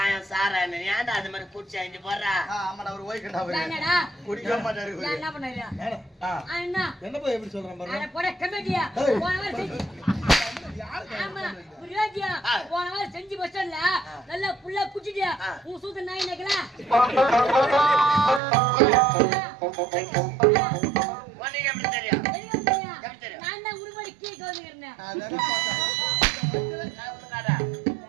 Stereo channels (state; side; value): drops out; left; at 18.4 s